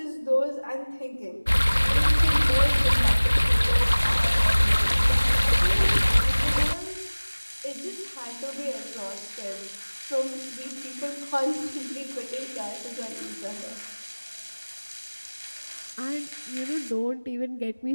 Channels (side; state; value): both; inverted; correlation -1.00